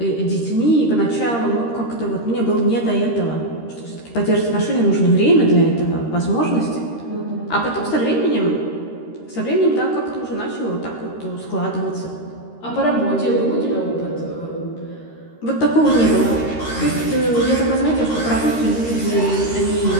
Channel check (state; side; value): late; right; 13 ms